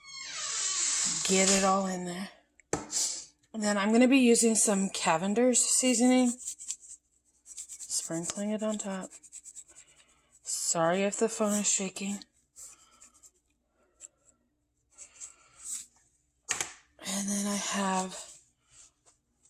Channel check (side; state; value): both; identical; correlation 1.00